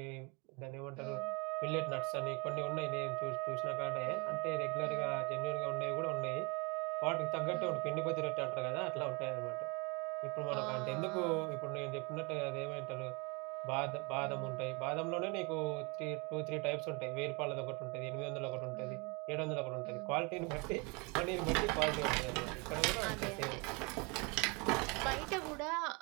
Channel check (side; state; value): left; quieter; 29.7 dB